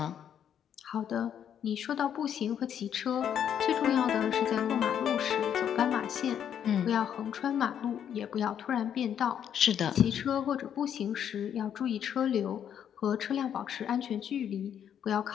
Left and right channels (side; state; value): right; quieter; 9.1 dB